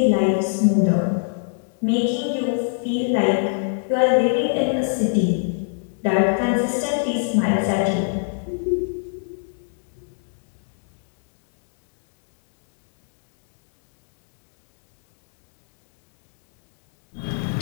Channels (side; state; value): right; silent; digital silence